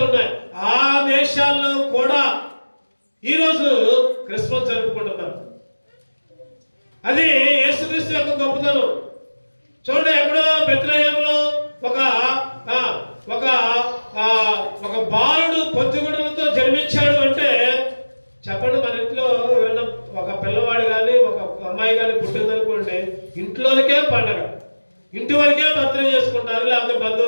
ఉన్నాయి. ఆ దేశాల్లో కూడా ఈరోజు క్రిస్మస్ జరుపుకుంటున్నారు. అది యేసుక్రీస్తు యొక్క గొప్పతనం. చూడండి, ఎక్కడో బెత్లెహేములో ఒక బాలుడు పొత్తిగుడ్డలతో జన్మించాడు అంటే చెప్పండి, మన ఇంట్లో ఎవరైనా ఒక పిల్లవాడు కానీ ఒక అమ్మాయి కానీ పుట్టిందనుకోండి, ఇంట్లోనికే పండగ. ఇంటి వరకే బర్త్డే చేసుకుంటారు, లేకపోతే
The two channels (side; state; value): both; inverted; correlation -1.00